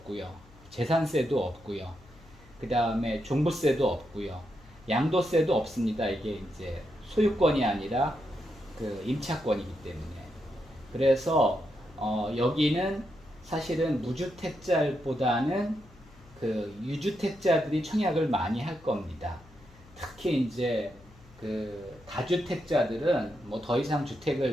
재산세도 없고요. 그 다음에 종부세도 없고요. 양도세도 없습니다. 이게 이제 소유권이 아니라 그 임차권이기 때문에. 그래서 여기는 사실은 무주택자보다는 그 유주택자들이 청약을 많이 할 겁니다. 특히 이제 그 다주택자들은 뭐 더 이상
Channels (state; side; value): noise; left; hum, 24 dB below the sound